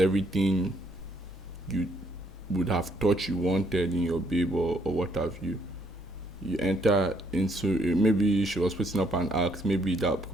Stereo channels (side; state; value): both; normal; correlation 0.69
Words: you would have thought you wanted in your babe or what have you. You enter into maybe she was putting up an act, maybe